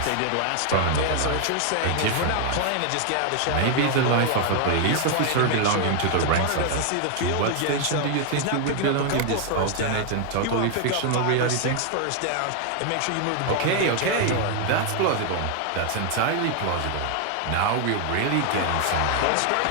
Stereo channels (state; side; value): different; both; correlation 0.00